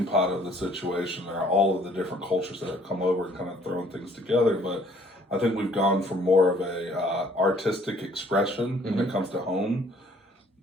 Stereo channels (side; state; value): both; normal; correlation 0.59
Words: pot of the situation are all of the different cultures that have come over and kind of thrown things together, but I think we've gone from more of a artistic expression when it comes to home